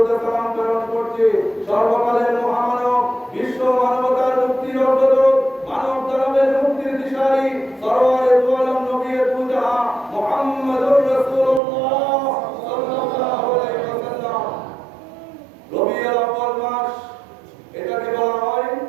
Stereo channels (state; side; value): drops out; left; at 11.6 s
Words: সালাম প্রেরণ করছি সর্বকালের মহামানব, বিশ্ব মানবতার মুক্তির অগ্রদূত, মানব দানবের মুক্তির দিশারি, সরওয়ারে দু আলম নবী দু জাহান মুহাম্মদুর রাসূলুল্লাহ সাল্লাল্লাহু আলাইহি ওয়াসাল্লাম। রবিউল আউয়াল মাস, এটাকে বলা হয়